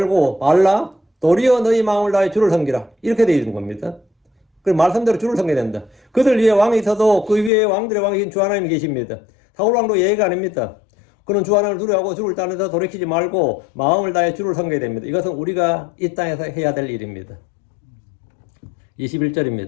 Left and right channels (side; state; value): right; drops out; at 7.5 s